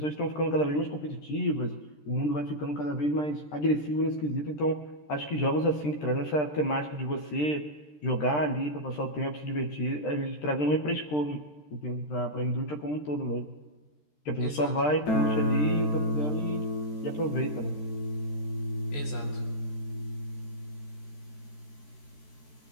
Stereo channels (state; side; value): late; right; 13 ms